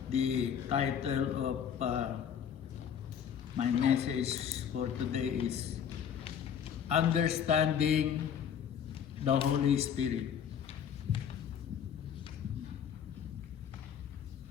the title of my message for today is Understanding the Holy Spirit.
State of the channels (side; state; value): right; quieter; 8.3 dB